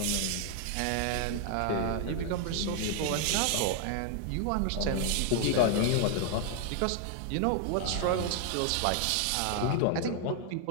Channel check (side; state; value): both; different; correlation 0.00